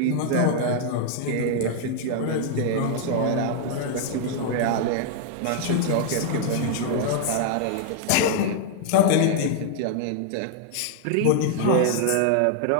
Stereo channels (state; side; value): different; both; correlation -0.01